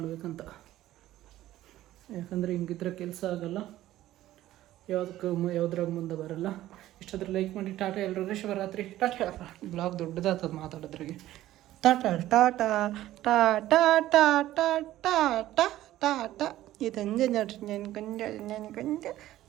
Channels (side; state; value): left; quieter; 14.5 dB